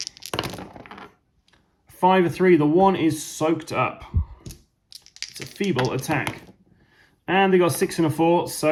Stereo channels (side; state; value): both; identical; correlation 1.00